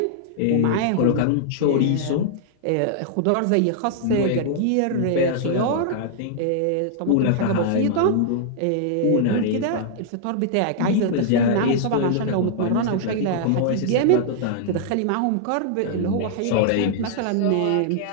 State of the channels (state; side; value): different; both; correlation -0.01